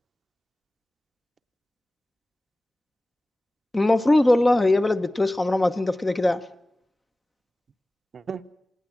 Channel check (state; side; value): normal; both; correlation 0.97